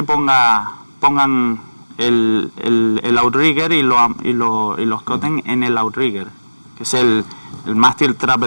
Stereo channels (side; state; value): both; inverted; correlation -1.00